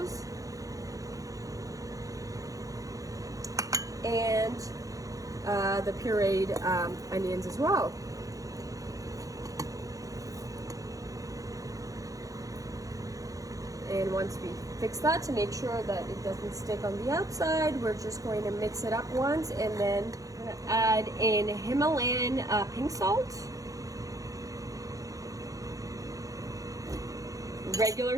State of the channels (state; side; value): late; left; 0.17 ms